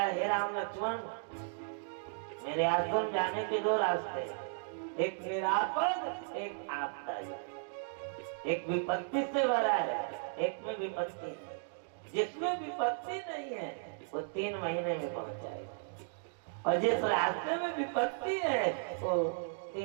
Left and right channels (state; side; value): silent; left; digital silence